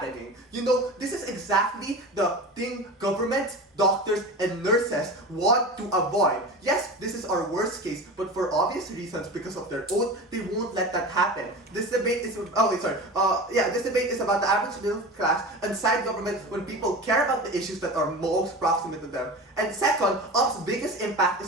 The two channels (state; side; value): normal; both; correlation 0.30